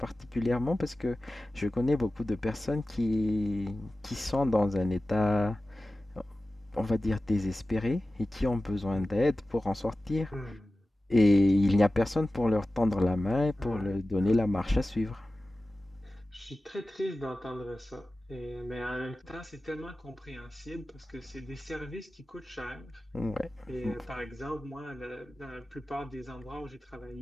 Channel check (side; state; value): both; normal; correlation 0.95